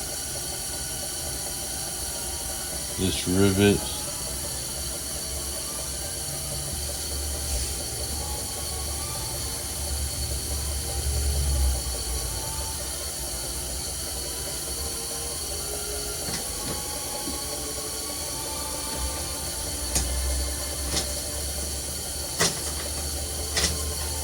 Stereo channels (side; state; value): both; identical; correlation 1.00